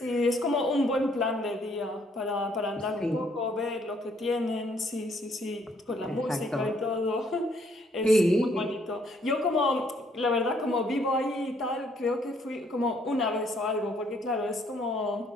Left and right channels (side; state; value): both; normal; correlation 0.67